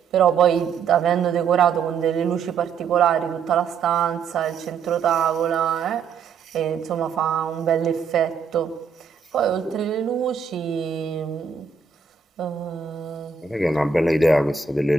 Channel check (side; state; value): left; quieter; 6.0 dB